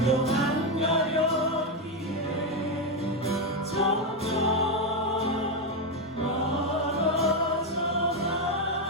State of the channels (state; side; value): normal; both; correlation 0.06